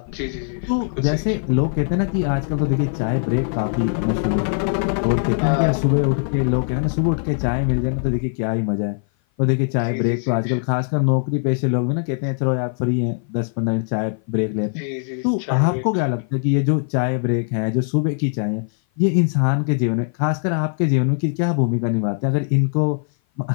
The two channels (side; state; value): right; silent; 56 dB below the other